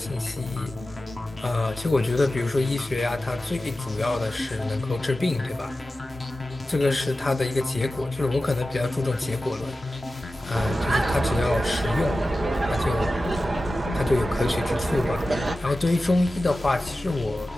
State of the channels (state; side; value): normal; both; correlation 0.94